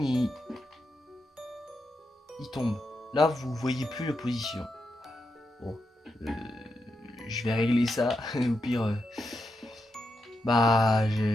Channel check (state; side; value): normal; both; correlation 0.85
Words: il tombe. Là, vous voyez plus la position. Bon, je vais régler ça. Au pire, bah,